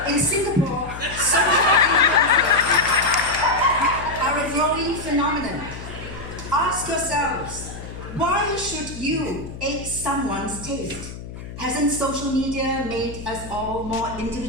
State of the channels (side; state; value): left; noise; hum, 12 dB below the sound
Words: In Singapore, social influencers are a growing phenomenon. Ask yourselves, why should you ape someone's taste? Hasn't social media made us all more